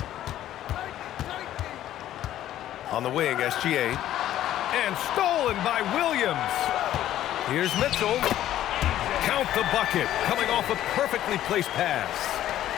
On the wing, SGA. And stolen by Williams. Here's Mitchell. Count the bucket. Coming off a perfectly placed pass.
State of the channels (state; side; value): quieter; right; 12.6 dB